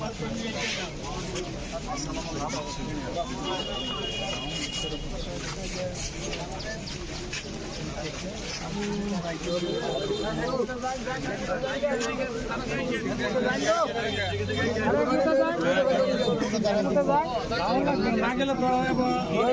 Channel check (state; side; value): identical; both; correlation 1.00